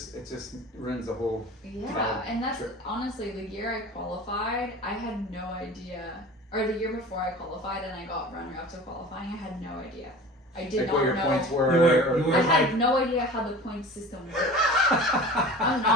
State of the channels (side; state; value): both; normal; correlation 0.38